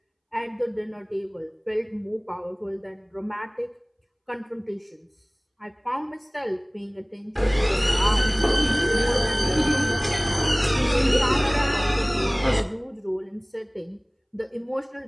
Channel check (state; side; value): identical; both; correlation 1.00